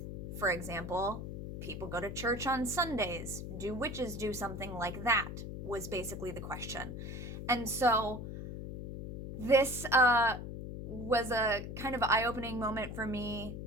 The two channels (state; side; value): noise; left; hum, 7 dB below the sound